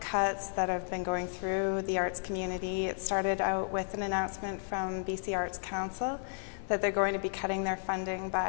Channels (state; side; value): silent; right; digital silence